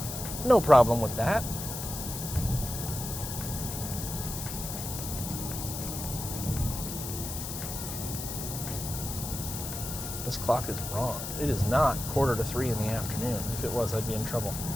No problem with that. This clock is wrong. It is not 2:45 in the afternoon. If it was, I'd be in trouble.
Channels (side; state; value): left; noise; hiss, 6 dB below the sound